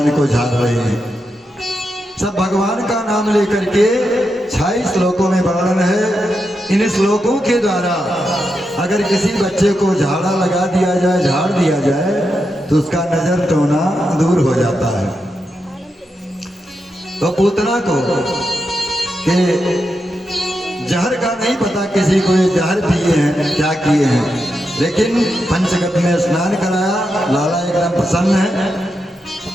को झाड़ रहे हैं। सब भगवान का नाम लेकर के 26 श्लोकों में वर्णन है। इन श्लोकों के द्वारा अगर किसी बच्चे को झाड़ा लगा दिया जाए, झाड़ दिया जाए, तो उसका नजर टोना दूर हो जाता है। तो पूतना को के जहर का नहीं पता किसी को, ये जहर पिए हैं क्या किए हैं, लेकिन पंचगव्य में स्नान कराया। लाला एकदम प्रसन्न है।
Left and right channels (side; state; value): both; normal; correlation 0.86